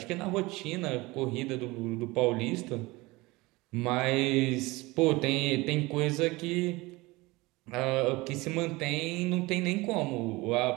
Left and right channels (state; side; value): quieter; left; 22.1 dB